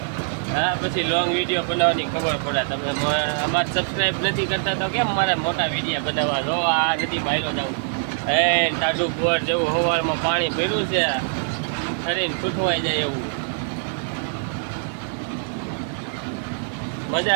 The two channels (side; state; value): left; silent; 56 dB below the other